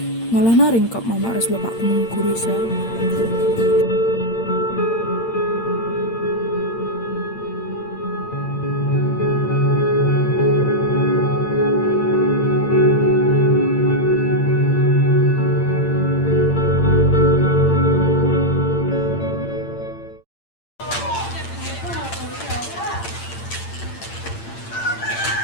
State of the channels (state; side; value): late; right; 8.8 ms